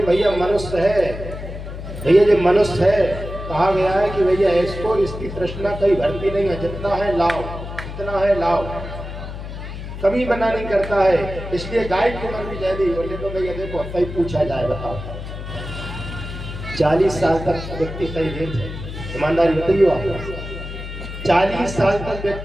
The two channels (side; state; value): left; noise; hum, 9 dB below the sound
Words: भैया मनुष्य है, भैया जो मनुष्य है, कहा गया है कि भैया इसको इसकी तृष्णा कहीं भरती नहीं है, जितना है लाओ, जितना है लाओ, कभी मना नहीं करता है। इसलिए गाय की उम्र भी दे दी। बोले तो भैया देखो सही पूछा जाए, बताओ 40 साल तक व्यक्ति सही नहीं है, ईमानदारी बताइए आप। 40 साल तक